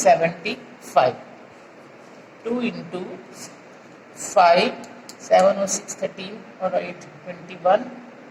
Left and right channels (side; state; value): both; identical; correlation 1.00